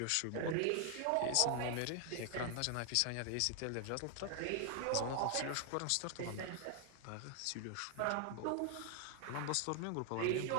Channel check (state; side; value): different; both; correlation 0.00